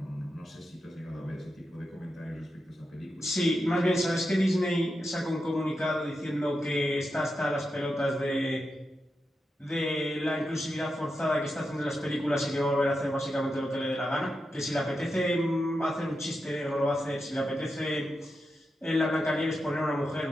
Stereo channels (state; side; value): normal; both; correlation 0.88